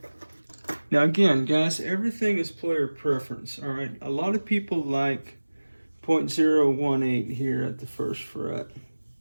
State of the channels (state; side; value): inverted; both; correlation -1.00